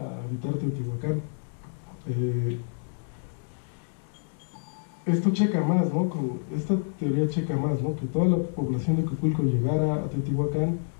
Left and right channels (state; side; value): silent; right; digital silence